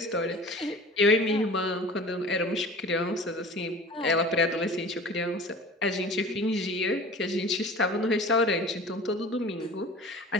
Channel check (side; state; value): both; normal; correlation 0.40